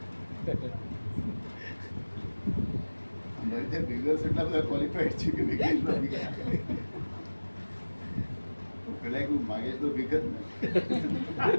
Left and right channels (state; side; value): inverted; both; correlation -1.00